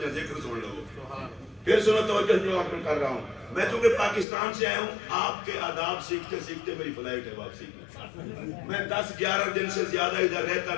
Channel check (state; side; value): drops out; right; at 4.2 s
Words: ذکر سن لو۔ پھر سنو توجہ جو آپ میں کر رہا ہوں، میں چونکہ پاکستان سے آیا ہوں، آپ کے آداب سیکھتے سیکھتے میری فلائٹ ہے واپسی کی، میں 10-11 دن سے زیادہ ادھر رہتا